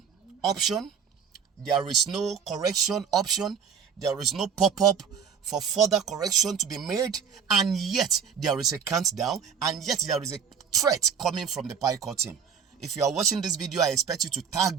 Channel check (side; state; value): left; quieter; 7.1 dB